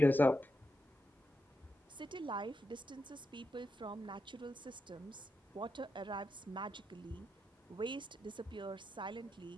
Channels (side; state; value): both; normal; correlation 0.86